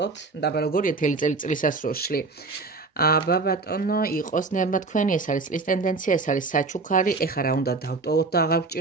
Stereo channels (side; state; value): left; quieter; 3.9 dB